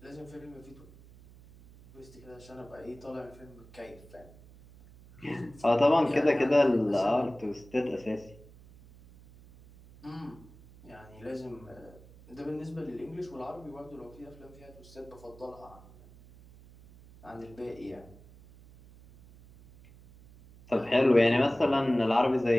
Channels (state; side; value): noise; right; hum, 22 dB below the sound